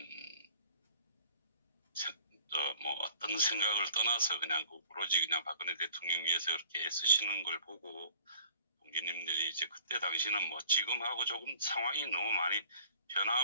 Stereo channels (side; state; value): both; inverted; correlation -0.51